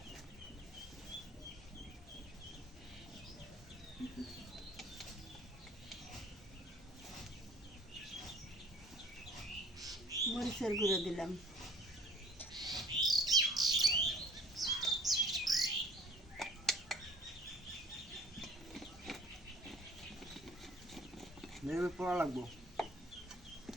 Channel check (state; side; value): normal; both; correlation 0.50